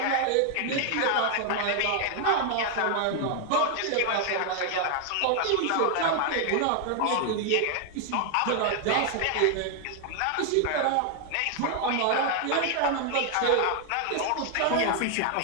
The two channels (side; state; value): both; different; correlation 0.00